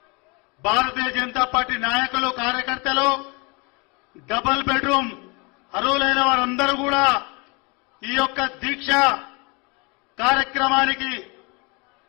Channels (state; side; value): quieter; right; 29.6 dB